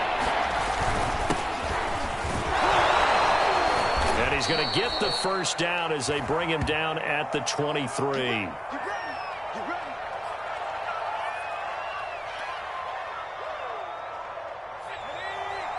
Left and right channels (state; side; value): identical; both; correlation 1.00